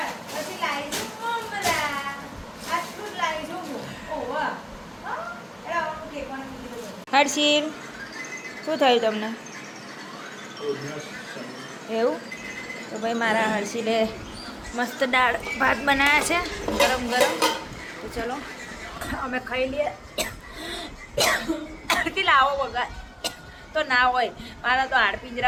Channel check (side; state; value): both; identical; correlation 1.00